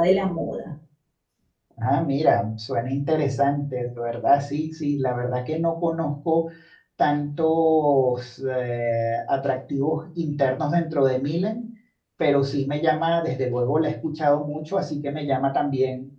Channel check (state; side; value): identical; both; correlation 1.00